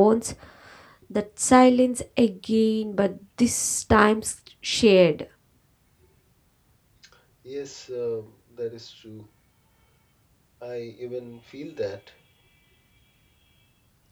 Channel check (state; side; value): identical; both; correlation 1.00